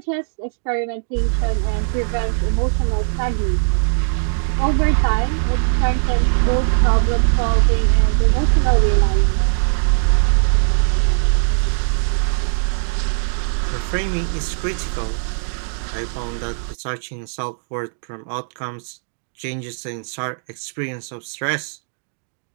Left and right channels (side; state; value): left; silent; digital silence